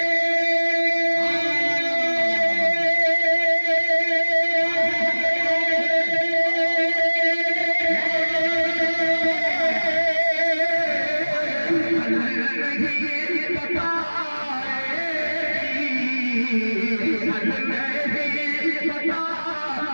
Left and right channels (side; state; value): both; inverted; correlation -1.00